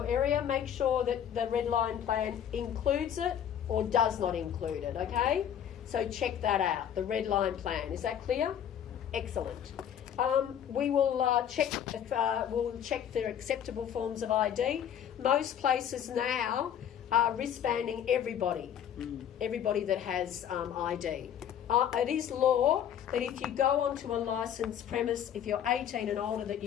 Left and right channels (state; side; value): quieter; right; 9.4 dB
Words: area, make sure that the red line plan includes it or does not include it, okay? So check that out, the red line plan. Is that clear? Excellent. We will check for acceptable forms of ID. Most places now are wristbanding everybody that has ID. It is law that if you go onto a licensed premise, if you're 18 and older, that